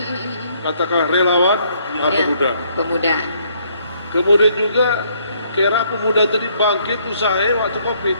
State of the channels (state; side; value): inverted; both; correlation -0.67